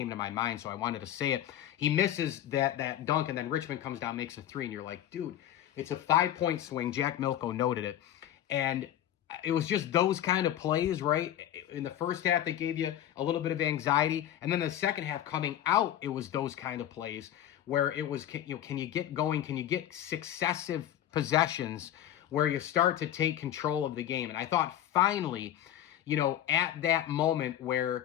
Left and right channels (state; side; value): quieter; right; 11.5 dB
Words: to my mind, so I wanted to say it. He misses that dunk, and then Richmond comes down, makes a 3, and you're like, dude, it's a 5-point swing. Jack Milko noted it, and it was just those kind of plays, right? In the first half, they gave you a little bit of anxiety, and then the second half coming out, it was those kind of plays where it was, can you get going? Can you get successive possessions where you start to take control of the game? And I thought finally, at that moment